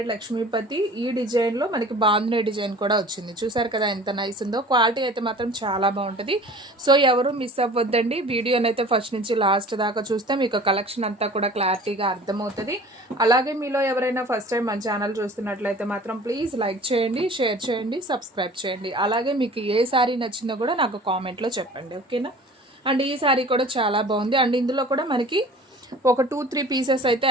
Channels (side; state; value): both; normal; correlation 0.44